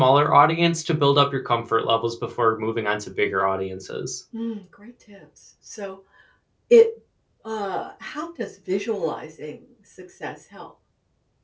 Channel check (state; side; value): identical; both; correlation 1.00